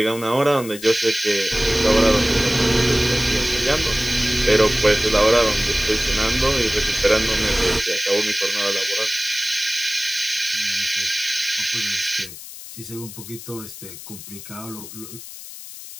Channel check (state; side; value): noise; left; hiss, 14 dB below the sound